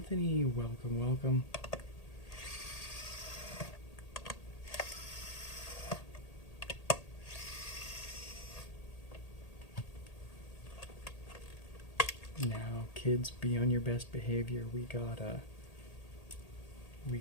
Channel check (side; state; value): right; late; 1.8 ms